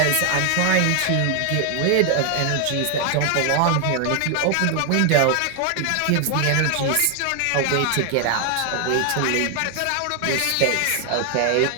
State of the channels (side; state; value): both; different; correlation 0.00